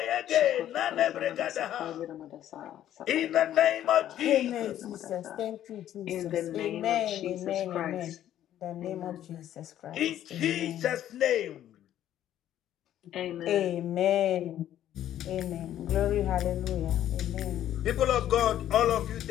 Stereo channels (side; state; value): right; quieter; 11.7 dB